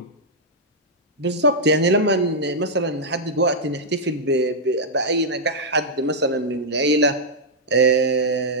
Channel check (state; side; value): normal; both; correlation -0.07